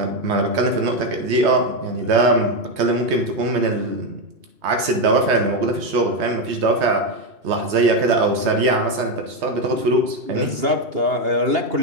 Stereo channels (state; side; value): late; left; 3.2 ms